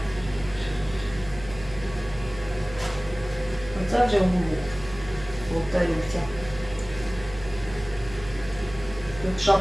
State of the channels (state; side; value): noise; right; hum, 15 dB below the sound